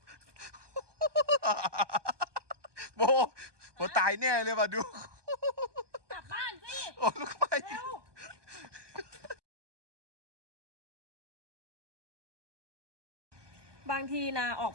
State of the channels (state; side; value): late; left; 1.2 ms